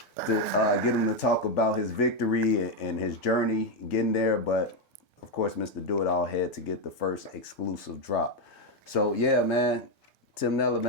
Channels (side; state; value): both; normal; correlation 0.05